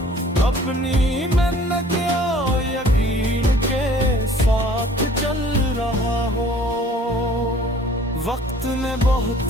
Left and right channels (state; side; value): normal; both; correlation 0.52